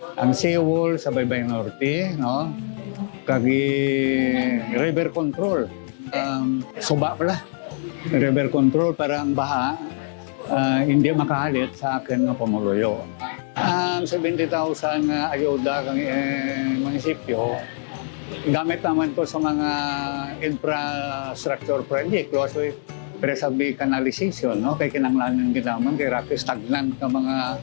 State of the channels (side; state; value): right; silent; digital silence